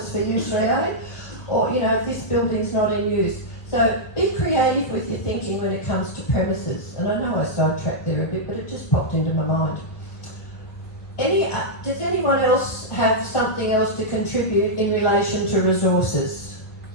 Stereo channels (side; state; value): right; late; 1.9 ms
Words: for U3A? Or, if this building's not in use. So be creative with your thinking when it comes to premises. And I know I sidetracked there a bit, but it just popped into my mind. Does anyone else have something else to contribute in relation to resources?